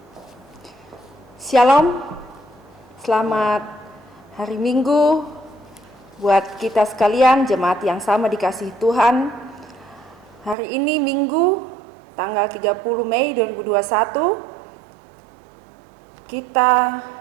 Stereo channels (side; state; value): left; drops out; at 10.6 s